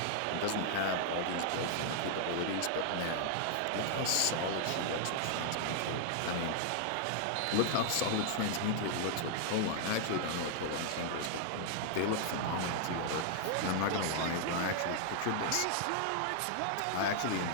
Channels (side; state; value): both; different; correlation 0.00